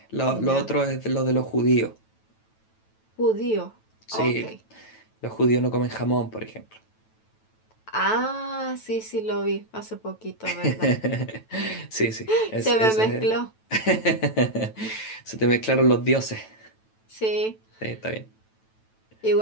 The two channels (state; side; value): late; right; 9.1 ms